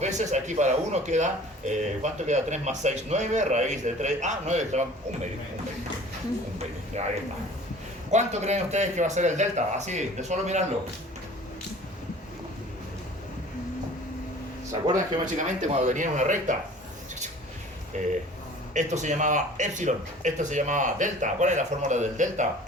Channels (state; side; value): normal; both; correlation 0.46